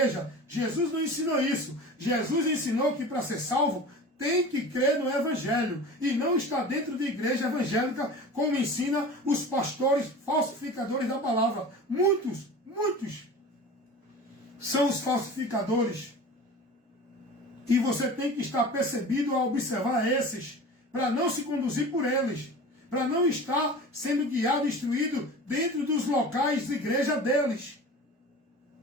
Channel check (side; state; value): both; normal; correlation 0.36